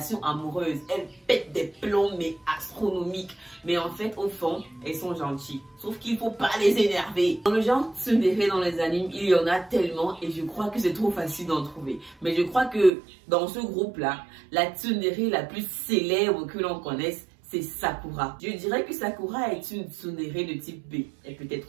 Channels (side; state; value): left; drops out; at 12.9 s